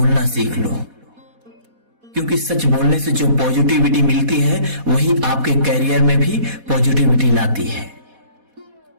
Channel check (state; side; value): late; left; 4.1 ms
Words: सीख लो, क्योंकि सच बोलने से जो पॉजिटिविटी मिलती है वही आपके कैरियर में भी पॉजिटिविटी लाती है।